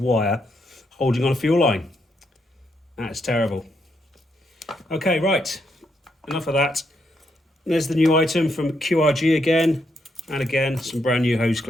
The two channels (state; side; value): normal; both; correlation 0.78